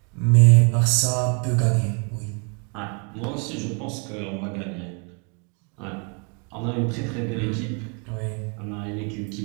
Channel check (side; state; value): left; quieter; 36.4 dB